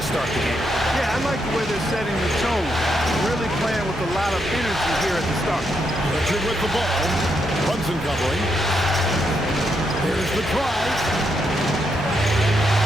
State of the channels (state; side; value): normal; both; correlation 0.80